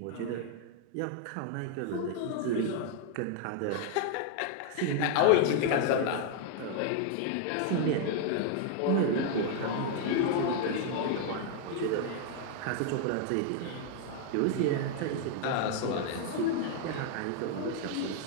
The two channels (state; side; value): different; both; correlation 0.00